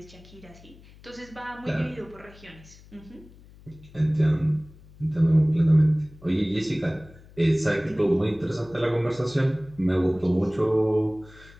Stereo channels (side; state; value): left; noise; hum, 23 dB below the sound